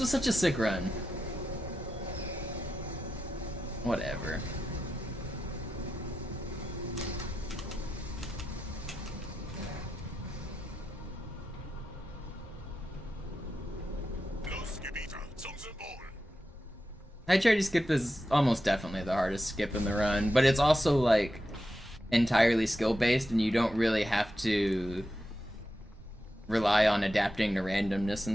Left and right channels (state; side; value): normal; both; correlation 0.89